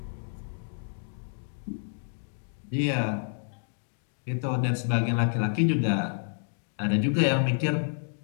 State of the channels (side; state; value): right; silent; digital silence